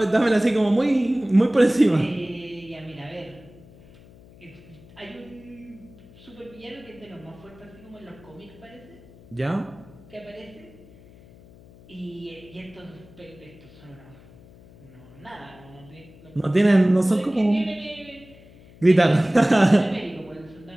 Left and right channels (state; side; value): noise; left; hum, 23 dB below the sound